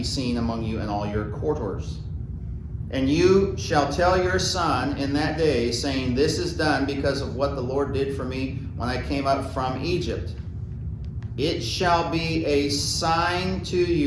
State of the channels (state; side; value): identical; both; correlation 1.00